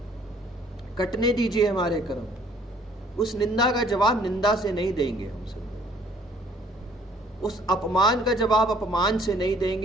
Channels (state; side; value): normal; both; correlation 0.59